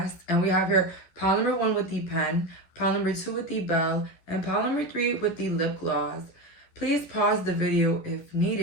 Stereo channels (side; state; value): right; late; 11 ms